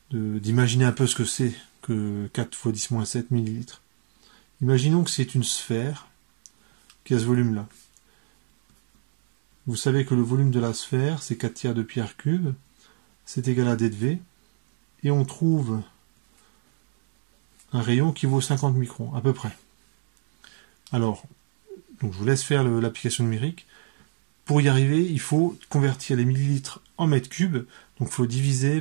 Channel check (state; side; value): silent; left; digital silence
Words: d'imaginer un peu ce que c'est que 4 fois 10-7 millilitres. Imaginons que c'est une sphère qui a ce volume-là. Vous savez que le volume de la sphère, c'est 4 tiers de pierre cube. C'est égal à D de V. Et on trouve un rayon qui vaut 50 microns, à peu près. Alors, donc je vous laisse faire l'application numérique. Pour y arriver, il faut convertir les millilitres en mètres cubes. Donc il faut